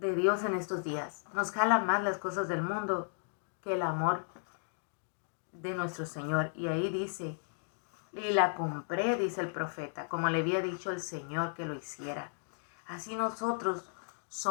en estos días. Nos jala más las cosas del mundo que el amor de nuestro Señor. Y ahí dice, y la compré, dice el profeta, como le había dicho el Señor que lo hiciera. Así nosotros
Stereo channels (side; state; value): right; silent; digital silence